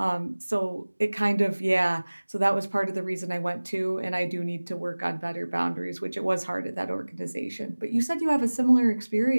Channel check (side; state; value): both; inverted; correlation -1.00